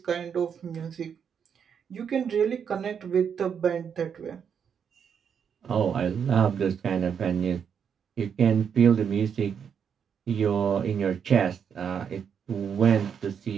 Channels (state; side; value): quieter; left; 7.4 dB